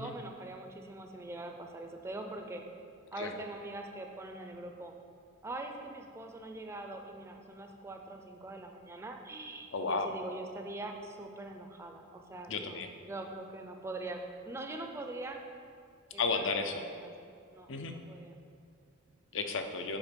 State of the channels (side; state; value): both; normal; correlation 0.05